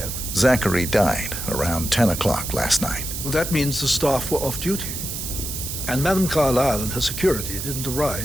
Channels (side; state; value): right; noise; hiss, 6 dB below the sound